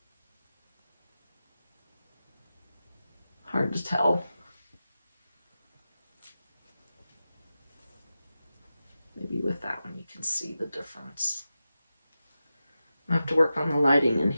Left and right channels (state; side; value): inverted; both; correlation -0.93